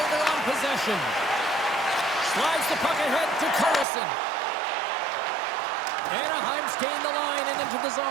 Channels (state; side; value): drops out; left; at 3.9 s